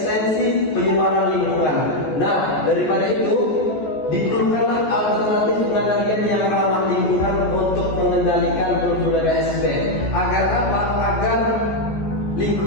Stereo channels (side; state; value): right; late; 14 ms